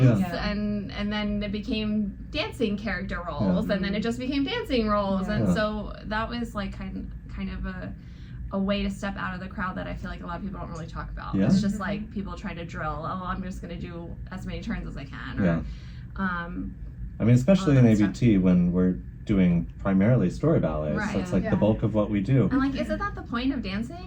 and then it became dancing character roles, and then it just became dancing roles, and so that was like kind of a way to step out of the crowd that I feel like a lot of people don't really talk about. It's just like people try to drill, I'm just gonna do as many turns as I can, or especially in ABT when we're doing primarily story ballets. So it's like the bulk of what we do. And like, isn't that the point of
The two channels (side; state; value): both; identical; correlation 1.00